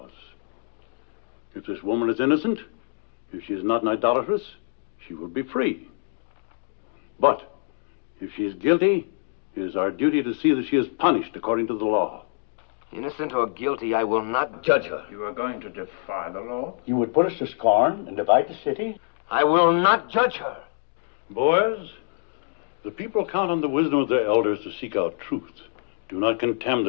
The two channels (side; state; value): right; silent; digital silence